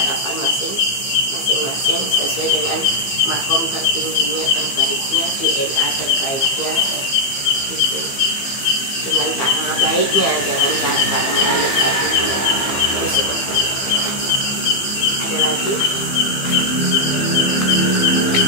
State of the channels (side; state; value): right; late; 15 ms